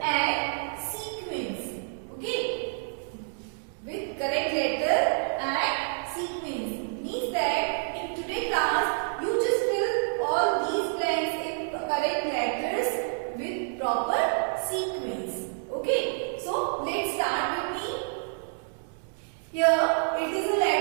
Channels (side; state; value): left; silent; digital silence